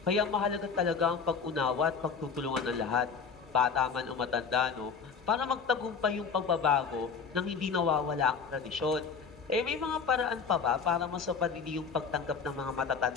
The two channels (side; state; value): right; quieter; 5.8 dB